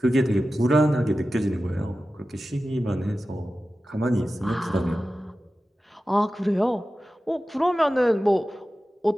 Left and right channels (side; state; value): both; normal; correlation 0.94